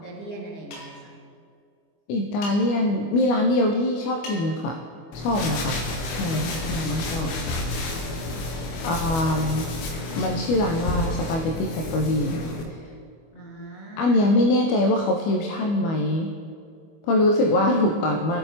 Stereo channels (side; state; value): right; late; 25 ms